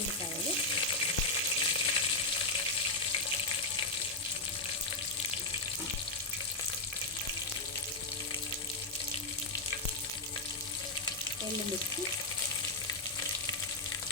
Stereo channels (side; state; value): right; quieter; 3.2 dB